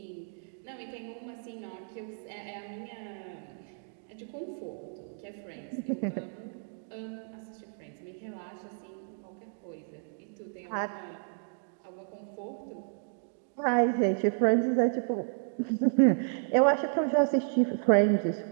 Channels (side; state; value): left; silent; digital silence